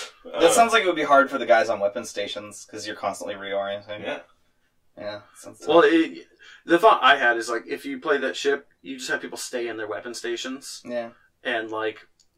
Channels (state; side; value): identical; both; correlation 1.00